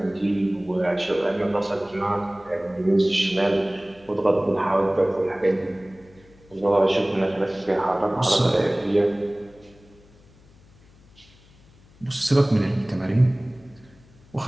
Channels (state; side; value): noise; left; hum, 27 dB below the sound